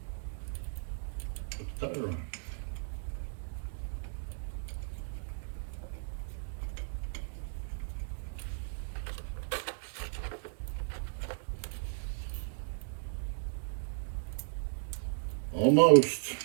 the tire on. Almost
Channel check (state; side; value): silent; left; digital silence